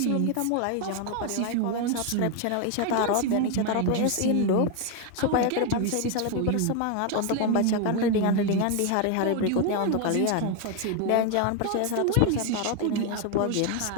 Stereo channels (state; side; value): different; both; correlation 0.01